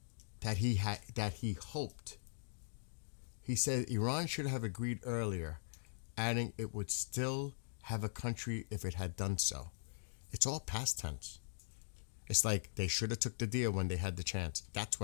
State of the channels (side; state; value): right; silent; digital silence